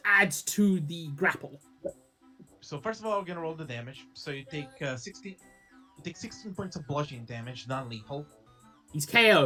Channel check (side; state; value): both; identical; correlation 1.00